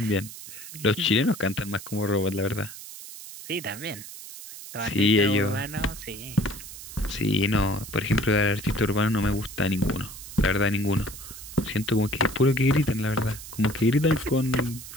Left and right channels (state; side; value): noise; right; hiss, 13 dB below the sound